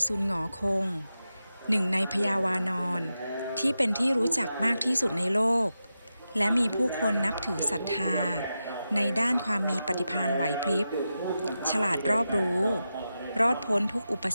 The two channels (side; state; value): both; inverted; correlation -0.90